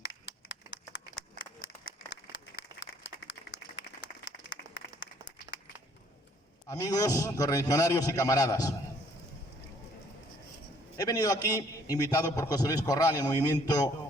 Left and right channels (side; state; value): both; normal; correlation 0.62